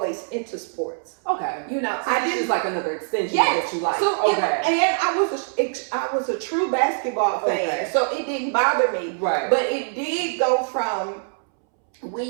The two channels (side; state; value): left; silent; 63 dB below the other